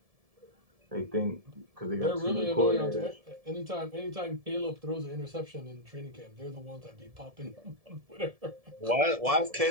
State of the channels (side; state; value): left; late; 1.7 ms